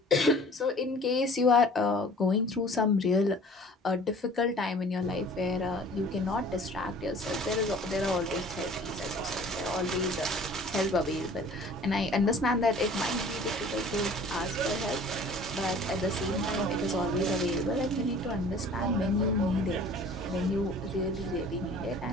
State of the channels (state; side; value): normal; both; correlation 0.48